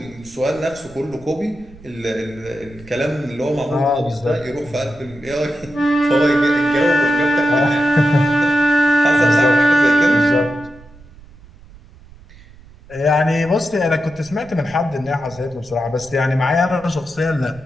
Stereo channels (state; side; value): noise; right; rumble, 23 dB below the sound